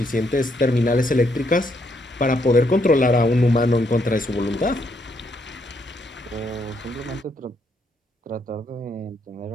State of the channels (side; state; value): both; normal; correlation 0.74